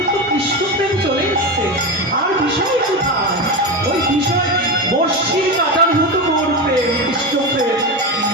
তো কৃষ্ণ প্রেম চলে এসছে, আর বিষয় কোথায়? ওই বিষয় বর্ষির কাটার মতো গৌর প্রেম, কৃষ্ণ প্রেম।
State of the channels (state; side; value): normal; both; correlation 0.18